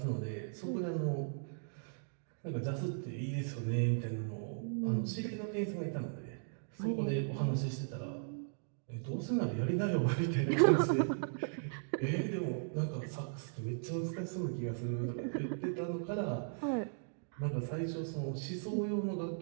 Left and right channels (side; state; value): left; silent; digital silence